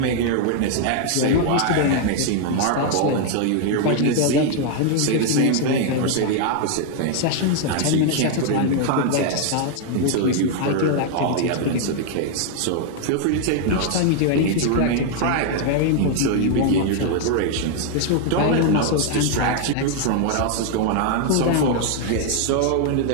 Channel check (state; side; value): different; both; correlation 0.00